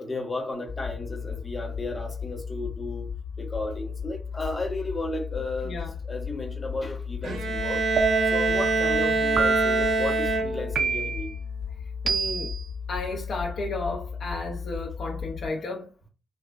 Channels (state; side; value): normal; both; correlation 0.73